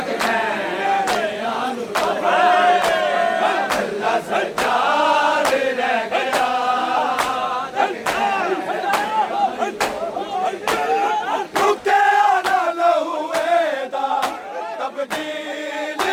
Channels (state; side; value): identical; both; correlation 1.00